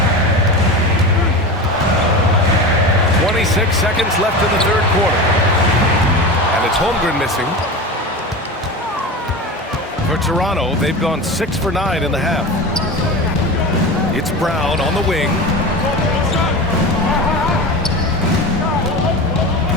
26 seconds left in the third quarter. And it's Holmgren missing. For Toronto, they've gone 6 for 9 in the half. It's Brown on the wing.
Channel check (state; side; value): normal; both; correlation 0.27